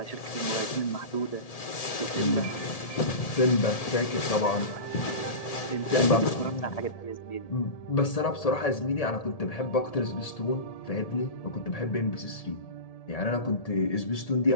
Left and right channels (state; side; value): late; right; 1.7 ms